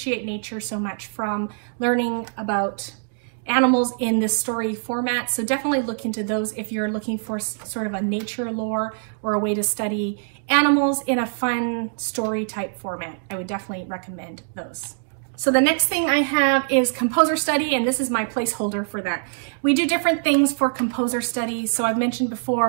nature so much from learning about animals in this story format. So definitely look into those if you're looking for sort of a nature lore or a way to study animals in a fun story type format. I would definitely recommend those. So the next thing I have is composer study, and this is my placeholder for that. We do different things for composer study. So I've mentioned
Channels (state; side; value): silent; left; digital silence